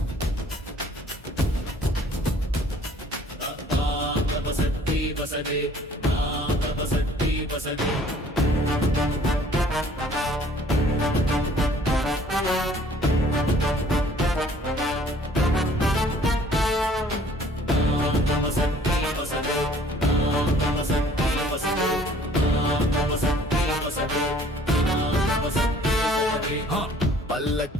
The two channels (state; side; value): normal; both; correlation 0.56